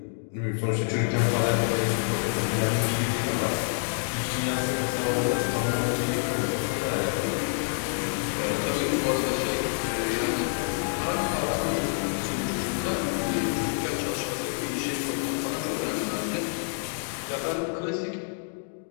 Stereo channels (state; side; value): silent; right; digital silence